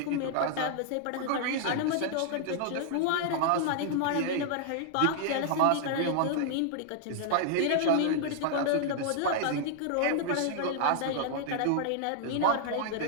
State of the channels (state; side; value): different; both; correlation 0.00